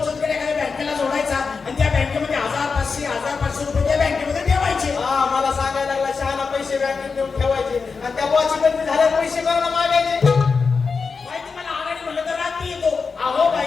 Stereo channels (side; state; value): right; quieter; 5.0 dB